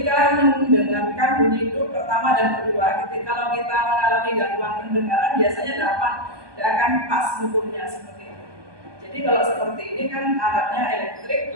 mendengarkan bunyi itu pertama dan kedua, kalau kita mengalami gangguan pendengaran biasanya tidak akan pas mengukurnya seperti itu. Jadi kalau seperti ini kan alatnya elektrik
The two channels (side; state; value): left; late; 1.2 ms